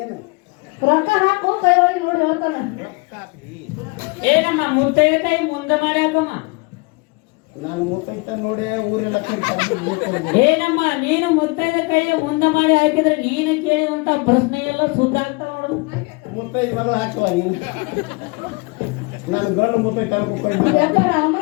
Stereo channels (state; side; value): quieter; right; 28.4 dB